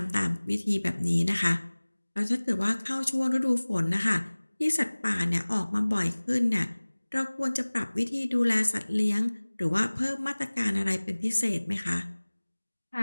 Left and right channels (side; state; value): both; inverted; correlation -1.00